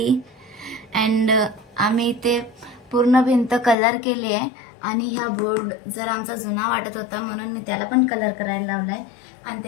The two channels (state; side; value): drops out; right; at 3.8 s